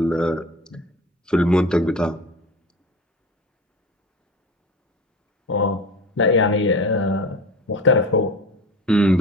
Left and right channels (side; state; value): both; normal; correlation 0.35